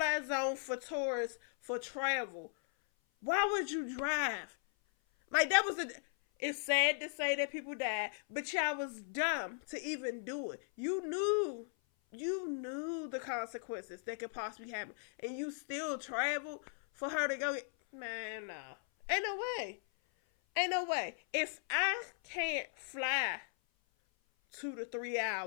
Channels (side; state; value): right; silent; 53 dB below the other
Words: zone for tourists for travel, why would you drive? Like that was it's sad to say that people died, but y'all was dumb to even do it. You knew the consequences that could possibly happen, and you still travel for her to go get, man, no. Ain't no way. If I can't fly 2 to 3